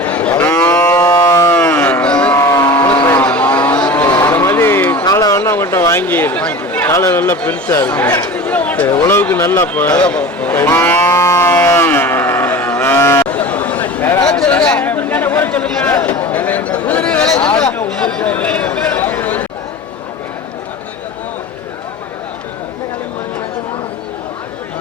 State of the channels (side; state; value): both; normal; correlation 0.34